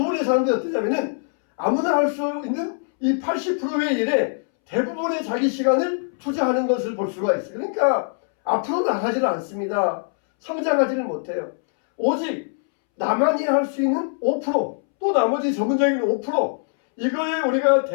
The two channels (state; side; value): silent; right; 64 dB below the other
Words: 사람들이 어떠냐면은 아무나 할 수 있는 이 80%의 일에 대부분의 자기 시간을 투자하는 것을 볼 수가 있어요. 그러니까 앞으로 나가지는 않습니다. 성장하지는 못해요. 오직 나만이 할 수 있는 5%, 또 나머지 전문적인 5%, 이거에 우리가